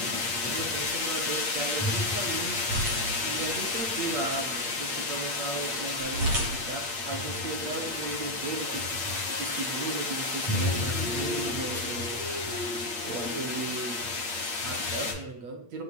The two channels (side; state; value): left; late; 8.5 ms